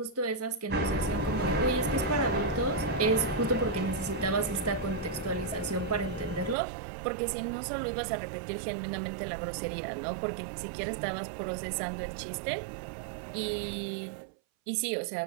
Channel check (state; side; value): drops out; left; at 6.6 s